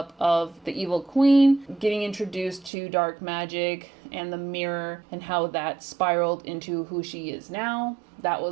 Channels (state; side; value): drops out; left; at 2.7 s